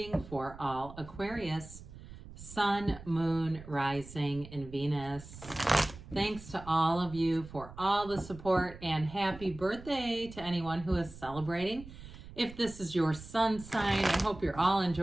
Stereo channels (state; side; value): noise; right; rumble, 16 dB below the sound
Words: for all Aquarius, Sun, Moon, Rising, and Venus. Thanks to all of you for all the support and happy birthday to anyone who is celebrating. If this is your sun sign, I hope you're all